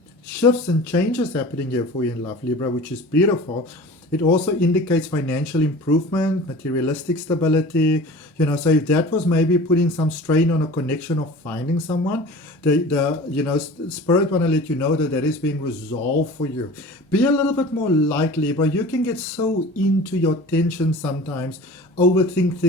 Shifts and changes happening here for you in love, Libra, which is beautiful. It also indicates financial improvement, materialistic stability. So if that was maybe putting some strain on a connection of finding someone, Spirit want to let you know that is being resolved for you. Be a little bit more light, Libra. You can get so into your tension sometimes, overthink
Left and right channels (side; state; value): both; normal; correlation 0.39